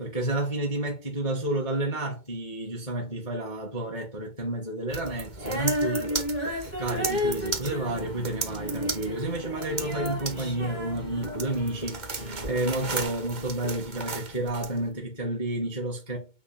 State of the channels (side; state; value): right; late; 2.2 ms